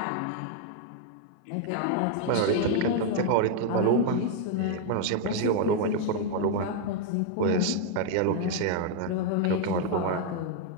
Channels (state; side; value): different; both; correlation 0.00